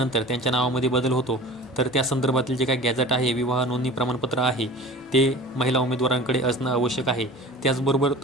त्यांच्या नावामध्ये बदल होतो तर त्या संदर्भातील जे काही गॅझेट आहे, विवाह नोंदणी प्रमाणपत्र आहे ते महिला उमेदवारांकडे असणं आवश्यक आहे. त्याचबरोबर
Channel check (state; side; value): noise; left; hum, 30 dB below the sound